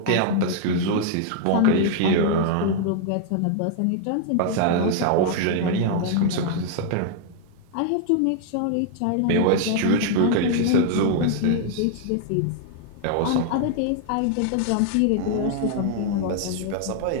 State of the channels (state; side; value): different; both; correlation 0.00